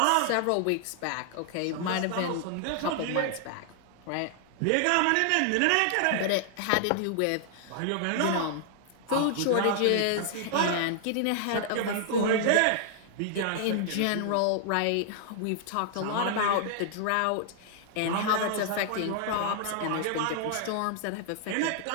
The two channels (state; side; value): different; both; correlation 0.00